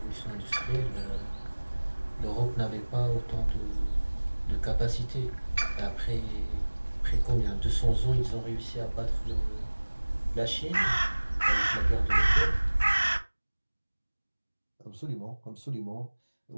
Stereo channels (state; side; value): inverted; both; correlation -1.00